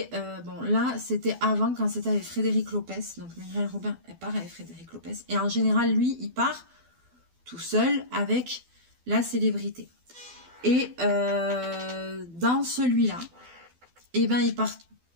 bon là c'était avant quand c'était avec Frédéric Lopez, donc Muriel Robin elle part avec Frédéric Lopez. Et en général lui il part tout seul avec la célébrité. Et dans celui-là, eh ben,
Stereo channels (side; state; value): left; late; 12 ms